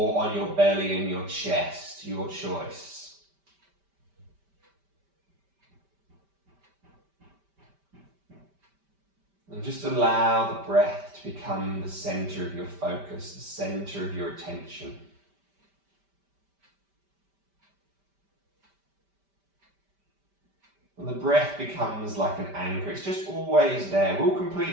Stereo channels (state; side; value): late; left; 5.1 ms